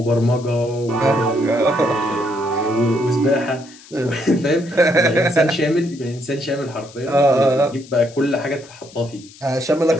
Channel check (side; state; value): left; noise; hiss, 22 dB below the sound